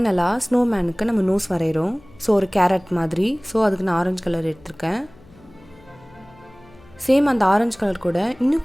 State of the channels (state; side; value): noise; left; hum, 25 dB below the sound